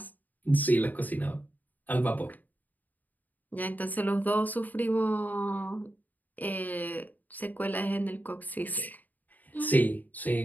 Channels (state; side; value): late; right; 0.083 ms